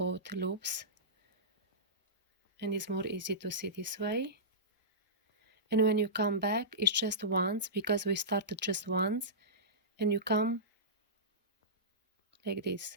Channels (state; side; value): normal; both; correlation -0.18